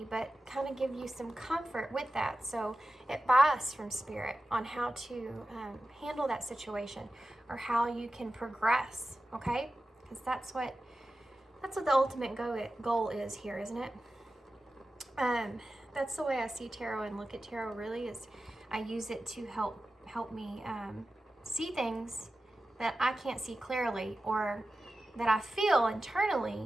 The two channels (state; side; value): normal; both; correlation 0.94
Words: but kind of give you some comfort with that. So advice from Spirit on how to handle that situation or how you can progress, okay? Because that's what the ultimate goal is here, isn't it? That's the way I see tarot and look at tarot. Really, is I use it to help me see things that I can't see clearly, or that I feel